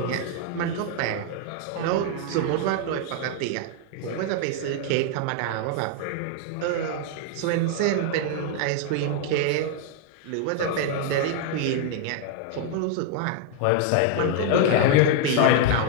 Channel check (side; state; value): both; different; correlation 0.00